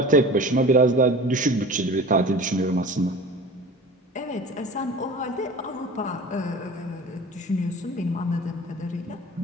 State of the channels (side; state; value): both; normal; correlation 0.38